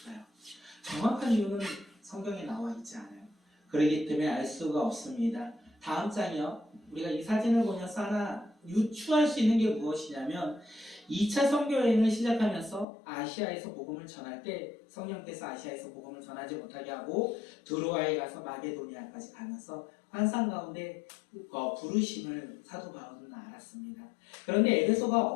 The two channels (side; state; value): right; drops out; at 12.9 s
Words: 정확한 이유는 성경에 나와 있지 않아요. 그렇기 때문에 알 수가 없습니다. 다음 장이요. 우리가 이 사진을 보면서 하나 유추할 수 있는 게 무엇이냐면 2차 선교여행을 시작하면서 아시아에서 복음을 전할 때 성령께서 아시아에서 복음을 전하지 못하게 하고 드로아에 가서 마게도니아까지 가면서 환상 가운데 부르심을 사도 바울은 알았습니다. 그런데 에베소가